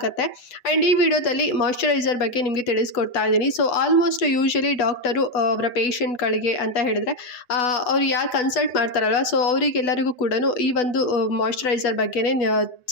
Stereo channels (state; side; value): late; right; 8.1 ms